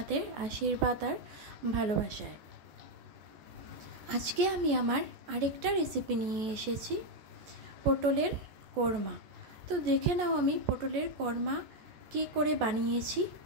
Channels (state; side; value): late; left; 14 ms